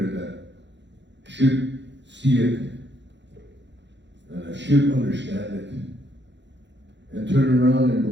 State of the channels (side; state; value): left; late; 0.52 ms